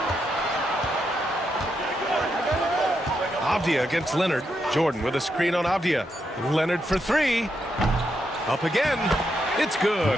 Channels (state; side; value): normal; both; correlation 0.82